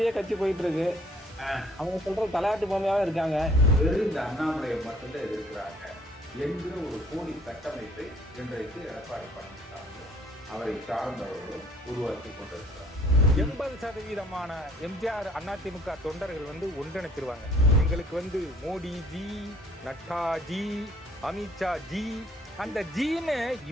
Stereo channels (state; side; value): normal; both; correlation 0.59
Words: கட்சி போயிட்டு இருக்கு. அவங்க சொல்ற தலையாட்டு பொம்மையாவே இருக்காங்க. வெறும் இந்த அண்ணாமலையை மட்டும்தான் எதிர்க்கிறாங்க என்கிற ஒரு போலி கட்டமைப்பை இன்றைக்கு எடப்பாடி பழனிசாமி அவரை சார்ந்தவர்களும் உருவாக்கி கொண்டிருக்கிறார். 80% எம்ஜிஆர் அதிமுக தொண்டர்கள் ஒன்றிணைச்சிருவாங்க. எங்களுக்கு Modi G, Nadda G, Amit Shah G, அந்த ஜீன்னு